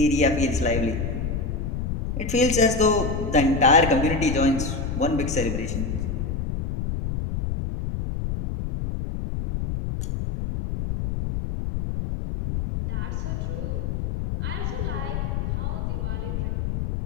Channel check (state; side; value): noise; left; rumble, 2 dB below the sound